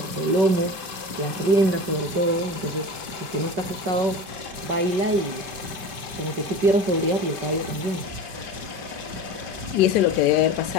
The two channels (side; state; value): left; late; 5.1 ms